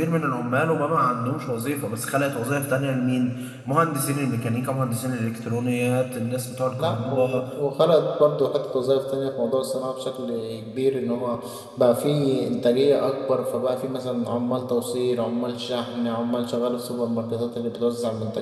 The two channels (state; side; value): identical; both; correlation 1.00